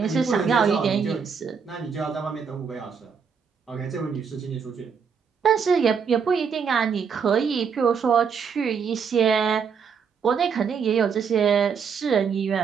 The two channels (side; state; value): left; quieter; 6.4 dB